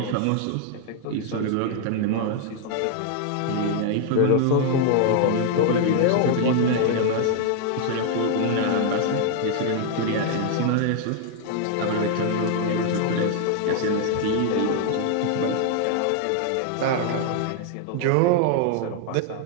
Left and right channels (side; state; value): both; different; correlation 0.00